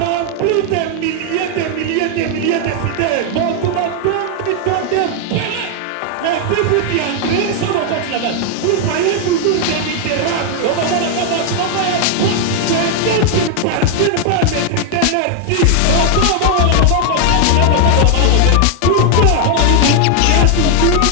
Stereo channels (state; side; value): different; both; correlation 0.00